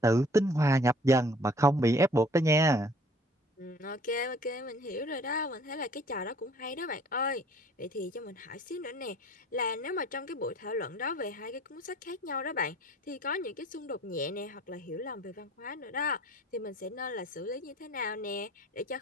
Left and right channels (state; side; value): normal; both; correlation 0.54